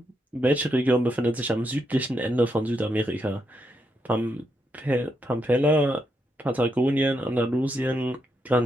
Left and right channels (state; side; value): normal; both; correlation 0.81